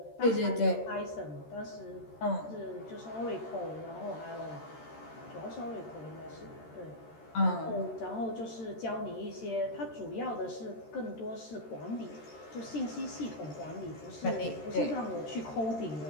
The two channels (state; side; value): late; right; 13 ms